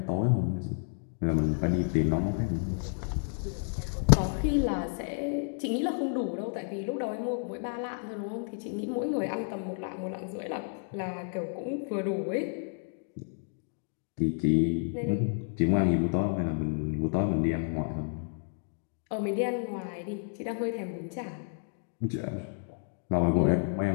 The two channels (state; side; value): silent; right; 57 dB below the other